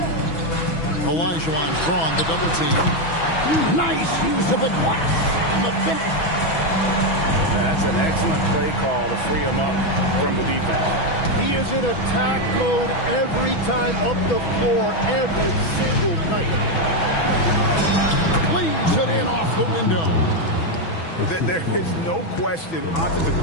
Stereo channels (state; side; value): late; right; 6.1 ms